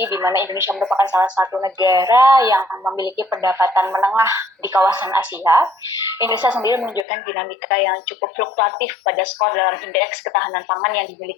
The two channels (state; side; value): drops out; right; at 7.1 s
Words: di mana Indonesia merupakan salah satu negara yang memiliki pendapatan menengah di kawasan Asia. Indonesia sendiri menunjukkan dinamika yang cukup fluktuatif pada skor dalam indeks ketahanan pangan yang